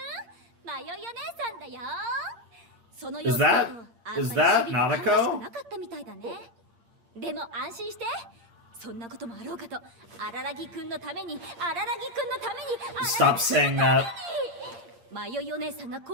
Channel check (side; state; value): left; late; 8.6 ms